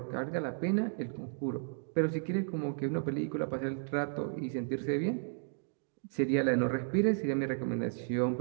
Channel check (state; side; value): silent; left; digital silence